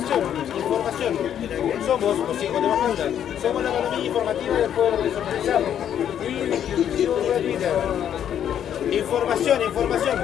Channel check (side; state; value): right; quieter; 9.7 dB